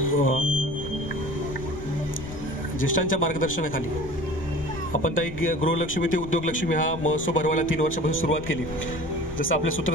ज्येष्ठांच्या मार्गदर्शनाखाली आपण ताई गृहलक्ष्मी ते उद्योगलक्ष्मी हा महोत्सव भरवायला 3 वर्षापासून सुरुवात केली. जसं आपल्या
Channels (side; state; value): left; noise; rumble, 15 dB below the sound